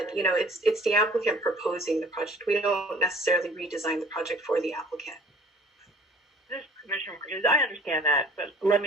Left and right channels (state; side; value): normal; both; correlation 0.51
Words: you know, it's the applicant proposing the project. We don't necessarily redesign the project for the applicant. This Commissioner, I understand that, but let